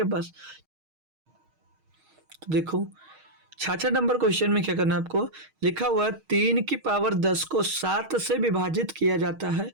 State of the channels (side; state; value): left; late; 6.4 ms